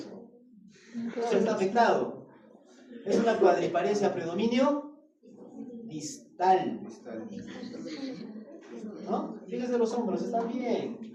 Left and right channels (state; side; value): identical; both; correlation 1.00